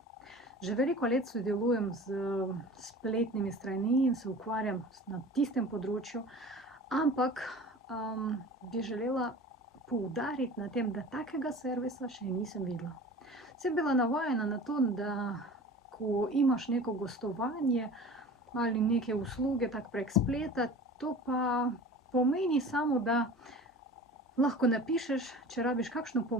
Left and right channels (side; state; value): both; normal; correlation 0.40